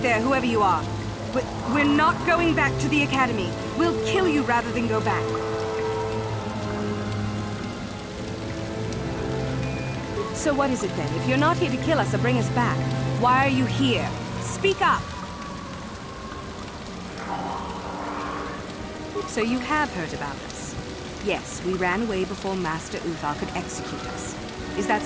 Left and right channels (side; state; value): both; identical; correlation 1.00